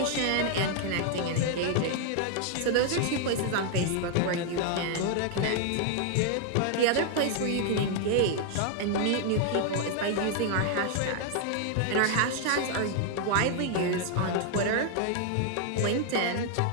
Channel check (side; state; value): both; different; correlation 0.00